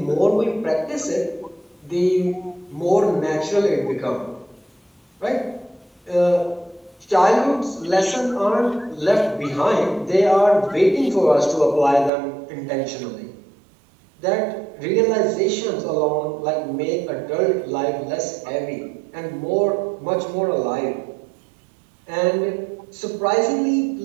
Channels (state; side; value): drops out; left; at 12.1 s